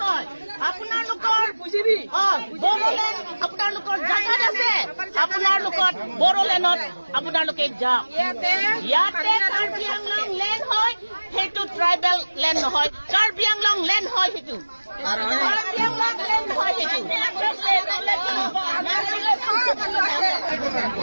আপোনালোকৰ জাগাত আছে আপোনালোকৰ বড়োলেণ্ডত আপোনালোকে যাওক ইয়াতে কাৰ্বি আংলং লেণ্ড হয় সেইটো ট্ৰাইবেল লেণ্ড নহয় কাৰ্বি আংলং লেণ্ড হয় সেইটো কাৰ্বি আংলং লেণ্ড হয় সেইটো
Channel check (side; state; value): both; inverted; correlation -1.00